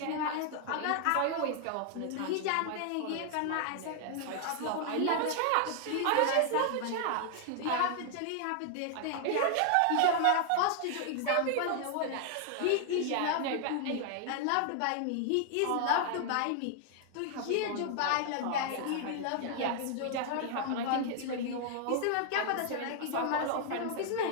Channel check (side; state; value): both; different; correlation 0.00